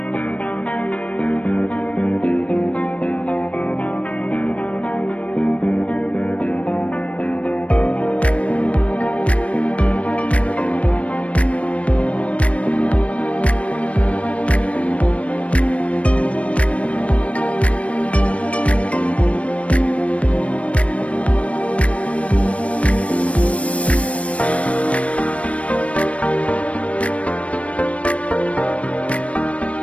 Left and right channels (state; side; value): late; right; 0.064 ms